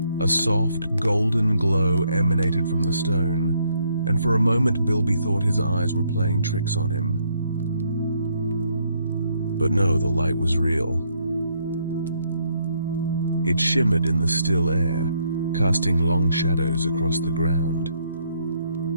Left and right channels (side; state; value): both; inverted; correlation -0.71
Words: A soft, golden glow emanated from the stone, and for a moment Bilby thought his eyes were playing tricks on him. But no, the light was real. It shimmered in the still air, casting long shadows across the ground.